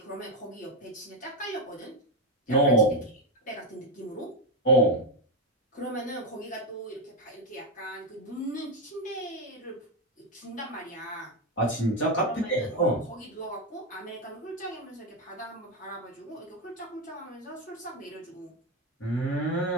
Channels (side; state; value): both; normal; correlation 0.09